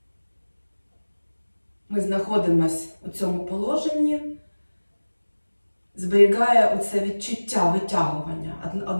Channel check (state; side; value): inverted; both; correlation -1.00